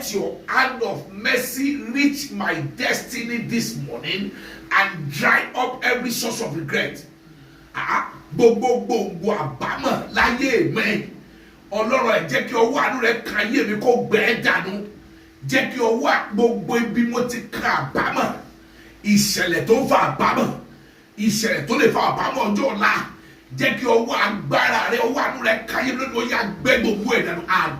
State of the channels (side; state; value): both; identical; correlation 1.00